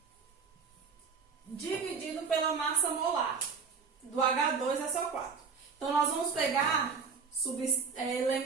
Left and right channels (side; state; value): left; quieter; 5.6 dB